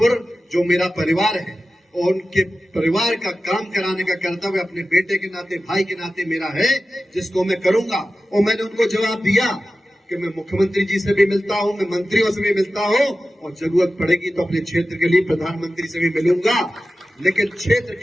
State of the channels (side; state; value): both; normal; correlation 0.94